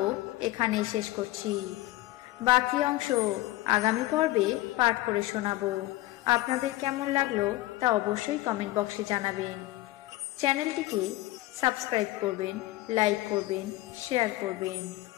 এখানে শেষ করছি। বাকি অংশ আগামী পর্বে পাঠ করে শোনাবো। আপনাদের কেমন লাগলো তা অবশ্যই কমেন্ট বক্সে জানাবেন। চ্যানেলটিকে সাবস্ক্রাইব করবেন, লাইক করবেন, শেয়ার করবেন।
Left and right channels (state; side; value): quieter; right; 17.2 dB